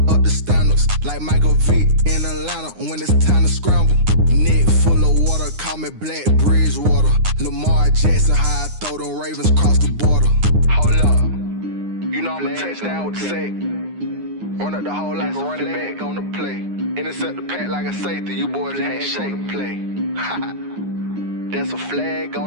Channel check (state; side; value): late; left; 9.7 ms